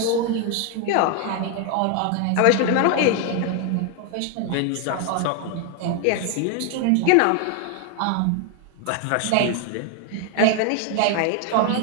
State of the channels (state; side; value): different; both; correlation 0.01